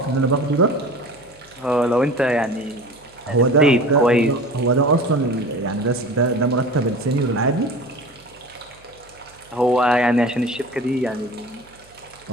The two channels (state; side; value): noise; right; hum, 28 dB below the sound